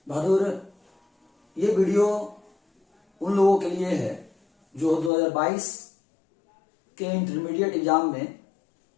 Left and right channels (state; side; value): drops out; right; at 5.1 s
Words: बहादुर, ये वीडियो उन लोगों के लिए है जो 2022 के इंटरमीडिएट एग्जाम में